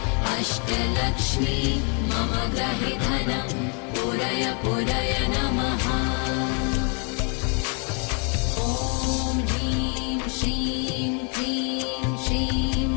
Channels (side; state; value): right; quieter; 37.7 dB